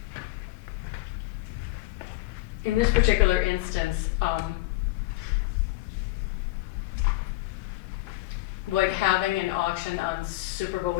In this particular instance, would having an auction on Super Bowl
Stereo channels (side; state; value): right; quieter; 19.2 dB